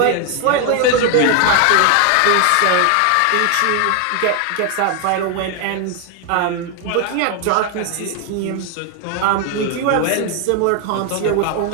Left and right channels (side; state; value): both; different; correlation 0.01